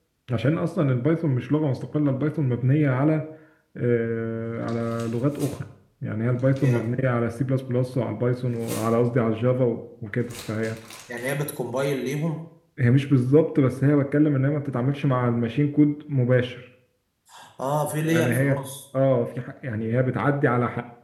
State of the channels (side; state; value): both; identical; correlation 1.00